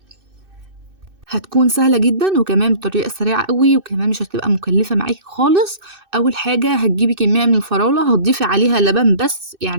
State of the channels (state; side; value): late; left; 2.6 ms